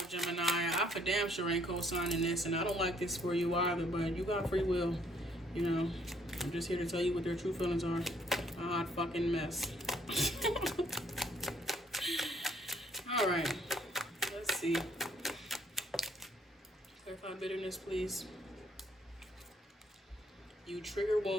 Gemini. I for damn sure ain't co-signing this, and I don't like this for you either, but you got free will. You know, I'm just here to tell you what their true feelings are. A hot fucking mess. All right, let's see. Clarify bitterness, please. You trigger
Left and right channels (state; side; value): normal; both; correlation 0.65